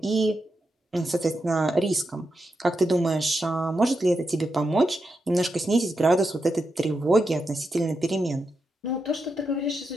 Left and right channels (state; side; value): normal; both; correlation 0.86